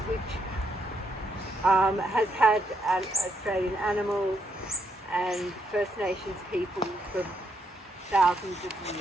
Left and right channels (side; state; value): both; normal; correlation 0.77